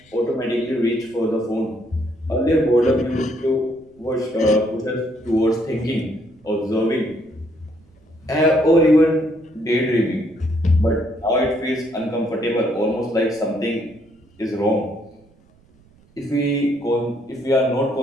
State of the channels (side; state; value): right; noise; rumble, 30 dB below the sound